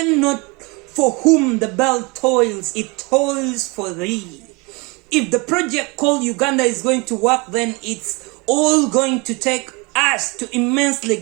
not for whom the bell toils, it toils for thee. If the project called Uganda is going to work, then it's all going to take us to immensely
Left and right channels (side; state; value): left; quieter; 27.3 dB